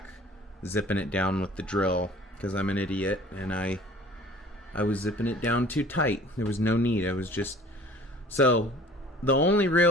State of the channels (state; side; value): normal; both; correlation 0.48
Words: zipping it down with the drill because I'm an idiot and I was zipping it down too tight. There was no need. I was just... So, the only